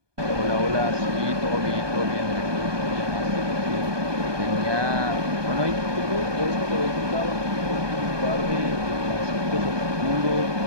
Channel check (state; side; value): late; left; 1.2 ms